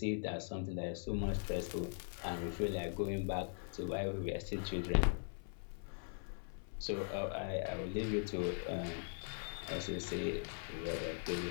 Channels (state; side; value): silent; right; 50 dB below the other